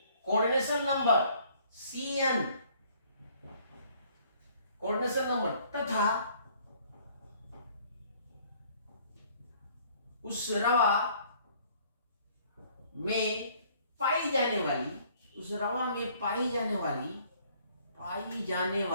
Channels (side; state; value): both; inverted; correlation -0.59